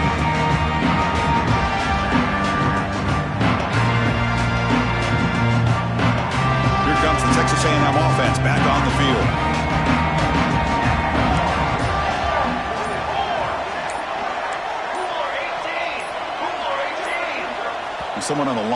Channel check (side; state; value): both; identical; correlation 1.00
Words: Here comes the Texas A&M offense back on the field. Someone on the